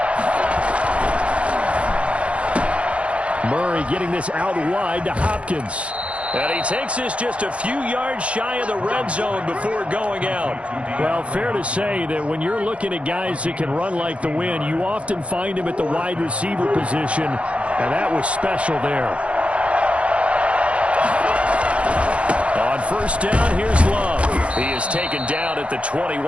Murray getting this out wide to Hopkins. And he takes this just a few yards shy of the red zone before going out. Well, fair to say that when you're looking at guys that can run like the wind, you often find him at the wide receiver position, and that was special there. On first down, here's Love. He is taken down at the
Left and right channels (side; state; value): left; late; 0.062 ms